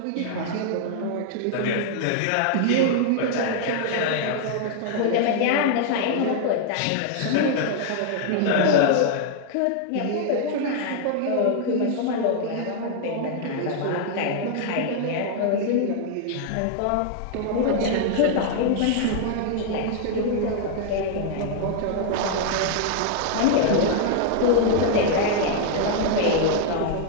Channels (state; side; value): different; both; correlation -0.01